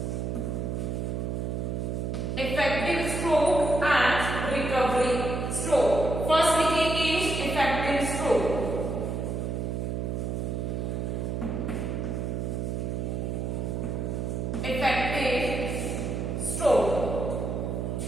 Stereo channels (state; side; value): noise; right; hum, 2 dB below the sound